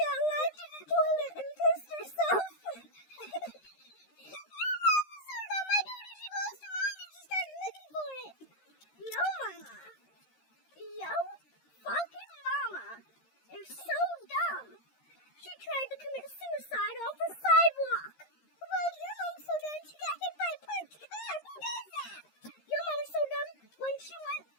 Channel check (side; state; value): right; late; 13 ms